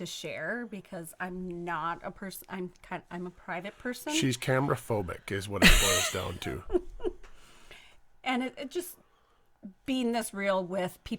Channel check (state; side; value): identical; both; correlation 1.00